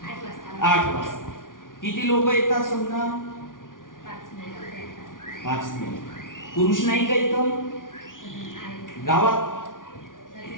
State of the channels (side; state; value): right; late; 0.89 ms